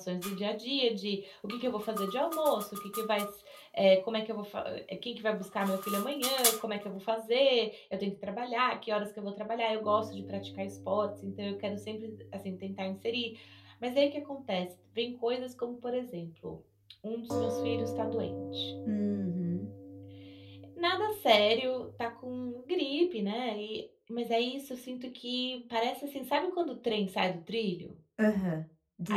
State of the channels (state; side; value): identical; both; correlation 1.00